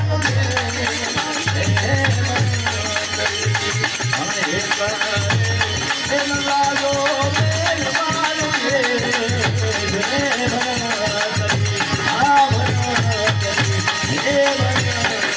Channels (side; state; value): both; identical; correlation 1.00